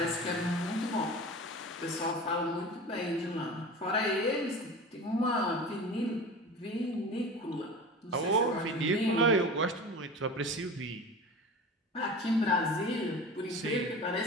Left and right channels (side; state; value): both; normal; correlation 0.34